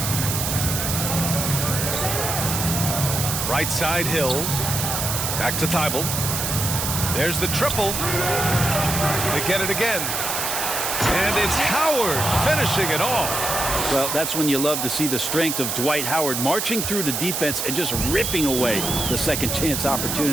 Right side Hill. Back to Thibault. There's the triple. They get it again. And it's Howard finishing it off. Well, that's when you love to see the strength of Dwight Howard marching through the defense and just ripping away the second chance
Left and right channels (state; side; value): noise; right; hiss, 2 dB below the sound